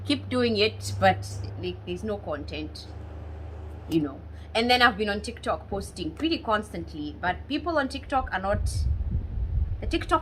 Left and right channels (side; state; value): both; identical; correlation 1.00